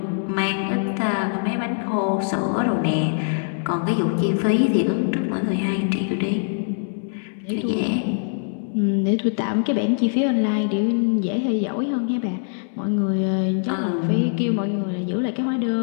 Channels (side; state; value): right; silent; 64 dB below the other